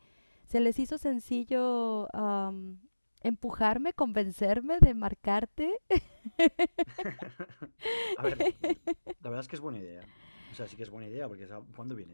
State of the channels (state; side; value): inverted; both; correlation -1.00